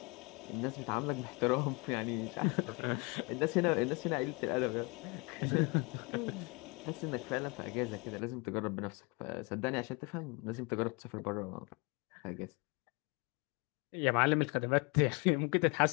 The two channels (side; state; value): right; quieter; 29.8 dB